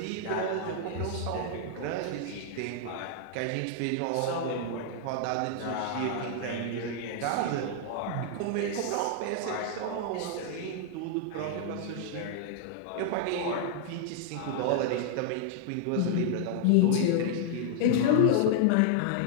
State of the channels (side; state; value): both; different; correlation -0.01